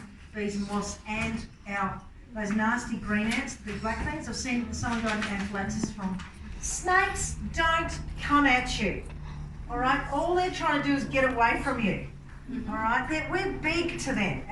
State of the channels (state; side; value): identical; both; correlation 1.00